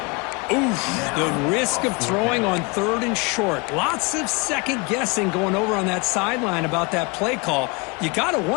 Oof, the risk of throwing on third and short. Lots of second guessing going over on that sideline about that play call. You got to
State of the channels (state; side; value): quieter; right; 28.9 dB